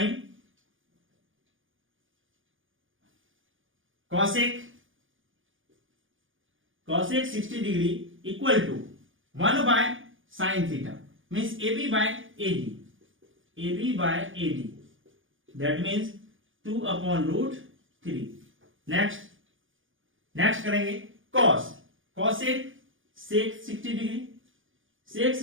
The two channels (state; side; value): late; left; 0.57 ms